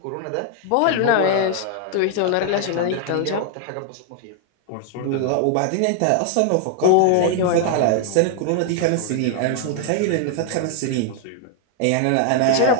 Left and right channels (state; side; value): different; both; correlation 0.00